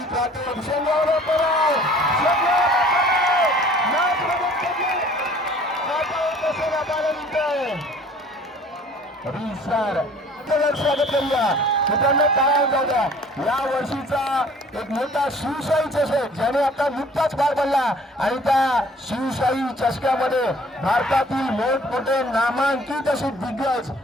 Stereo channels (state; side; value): normal; both; correlation 0.52